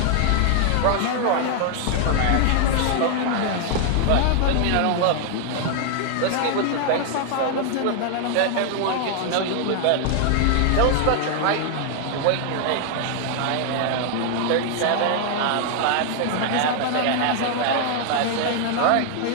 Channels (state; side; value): different; both; correlation 0.00